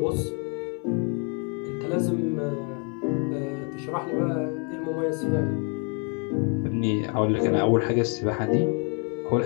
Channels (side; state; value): right; quieter; 37.5 dB